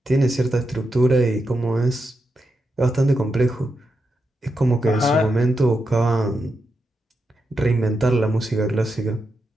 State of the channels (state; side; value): normal; both; correlation 0.86